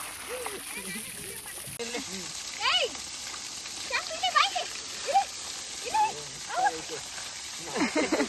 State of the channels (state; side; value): identical; both; correlation 1.00